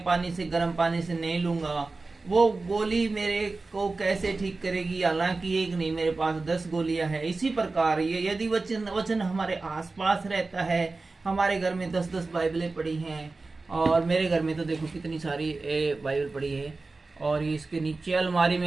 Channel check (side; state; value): left; quieter; 3.6 dB